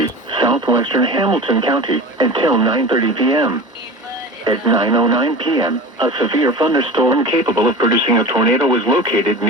southwestern Hamilton County until 9:30 p.m. At 9:09 p.m., a severe thunderstorm capable of producing a tornado was located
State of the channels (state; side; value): normal; both; correlation 0.34